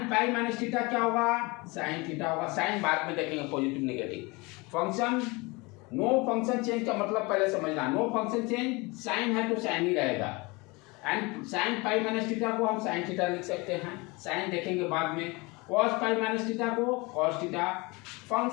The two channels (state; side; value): quieter; right; 25.7 dB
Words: पाई माइनस थीटा क्या होगा, साइन थीटा होगा। साइन बाद में देखेंगे, positive negative. Function no function change का मतलब पहले समझना, नो फंक्शन चेंज साइन है तो साइन ही रहेगा, and sign pi minus theta को हम साइन थीटा लिख सकते हैं, साइन देखेंगे बाद में। कॉस पाई माइनस थीटा को cos theta.